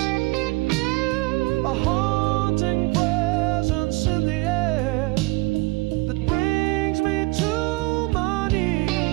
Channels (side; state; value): left; quieter; 23.7 dB